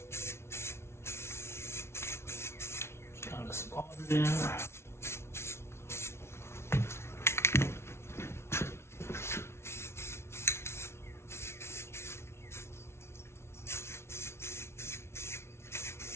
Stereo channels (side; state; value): right; late; 0.12 ms